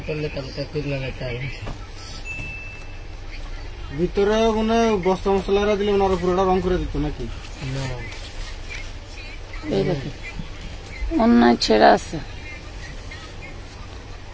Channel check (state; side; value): identical; both; correlation 1.00